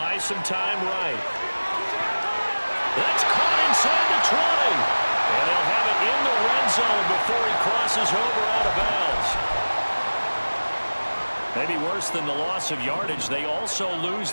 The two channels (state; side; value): inverted; both; correlation -1.00